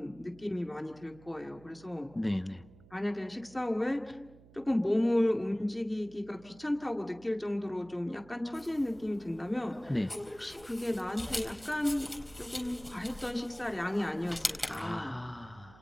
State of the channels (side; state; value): right; noise; hum, 23 dB below the sound